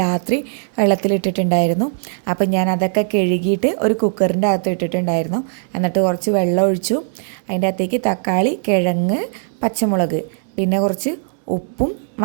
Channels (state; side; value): silent; left; digital silence